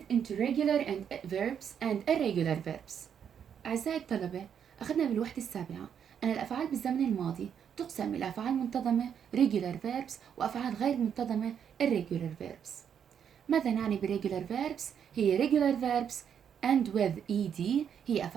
into regular and verbs and irregular verbs. أعزائي الطلبة، أخذنا بالوحدة السابعة أن الأفعال بالزمن الماضي تقسم إلى أفعال منتظمة regular verbs وأفعال غير منتظمة irregular verbs. ماذا نعني بالregular verbs؟ هي regular verbs and with ed هي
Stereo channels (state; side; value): quieter; left; 8.1 dB